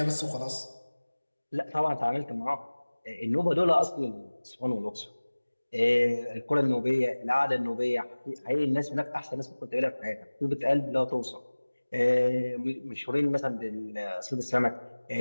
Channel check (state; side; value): inverted; both; correlation -1.00